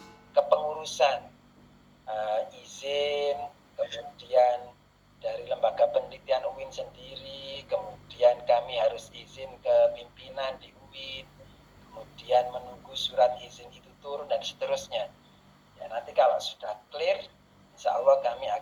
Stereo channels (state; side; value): identical; both; correlation 1.00